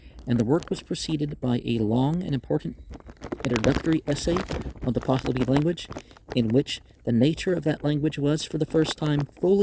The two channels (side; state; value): both; identical; correlation 1.00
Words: and the work was preceded by a long and important introductory essay on the Pahlavi language, in which the nature of that language was for the first time